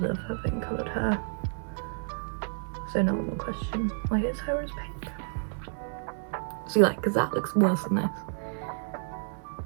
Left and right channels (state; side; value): silent; left; 58 dB below the other